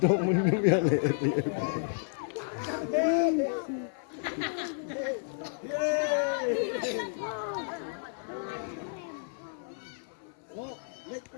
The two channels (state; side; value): silent; right; 57 dB below the other